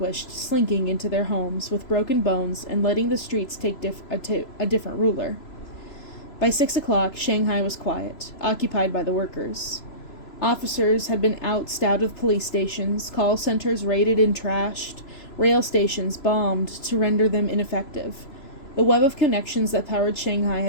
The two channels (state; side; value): late; right; 3.0 ms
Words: slinking into their homes with broken bones and letting the streets take a different ruler. By 6 o'clock, Shanghai was quiet, occupied by the workers. Officers had been ousted out of police stations, call centers raided and trashed, rail stations bombed to render them ineffective. The web of connections that powered Shanghai